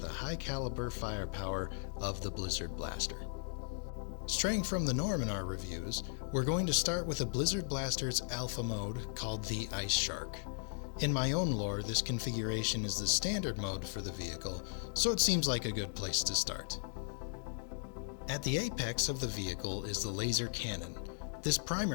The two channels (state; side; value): silent; right; digital silence